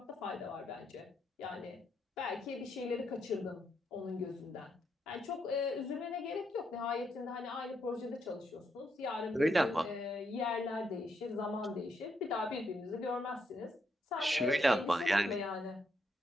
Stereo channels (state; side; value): normal; both; correlation 0.78